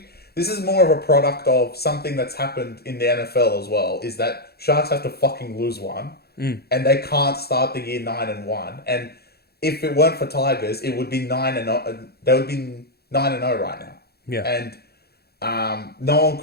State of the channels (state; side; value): late; right; 0.46 ms